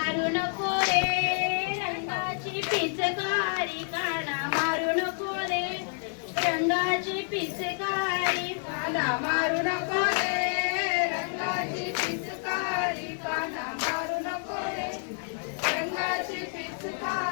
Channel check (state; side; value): silent; right; 59 dB below the other